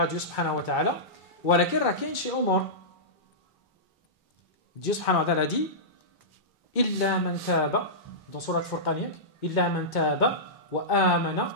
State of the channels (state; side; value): normal; both; correlation -0.16